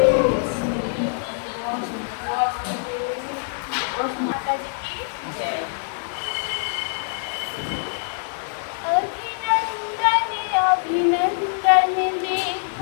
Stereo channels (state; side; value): silent; right; 63 dB below the other